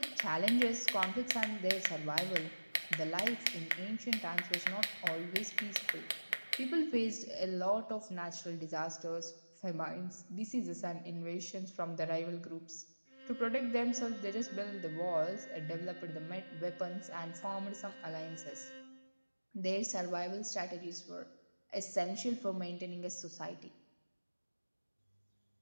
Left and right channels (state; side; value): inverted; both; correlation -1.00